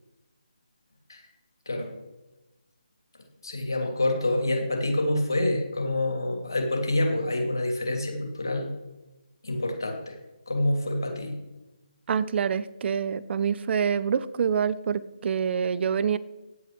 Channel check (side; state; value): both; inverted; correlation -0.80